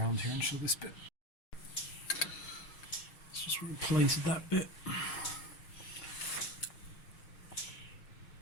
here and show this bit. Let's just replace that bit.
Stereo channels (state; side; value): late; right; 6.4 ms